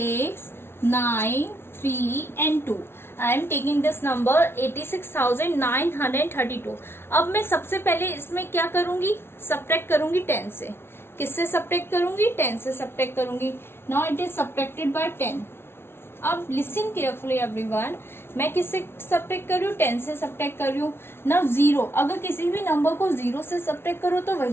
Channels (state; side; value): late; right; 0.12 ms